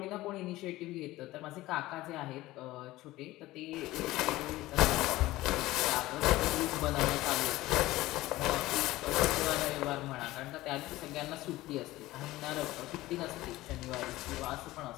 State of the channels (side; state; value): right; quieter; 17.6 dB